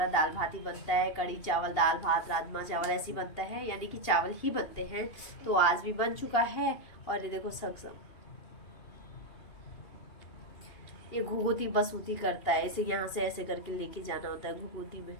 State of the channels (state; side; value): late; right; 2.8 ms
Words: दाल भात ही बनता है, कड़ी चावल, दाल भात, राजमा चावल ऐसे बनता है, यानी कि चावल ही बनते हैं। तो आज भी बन चुका है। और ये देखो सक्षम, ये घुघुती बसुती करता है, इसे यहाँ से ऐसे करके लेके जाना होता है घुघुती में।